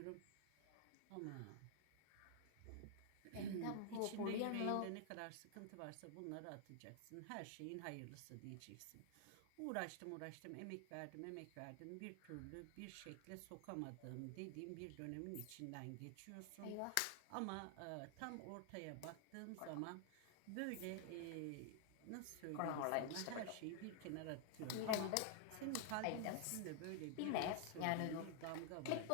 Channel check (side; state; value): both; different; correlation 0.00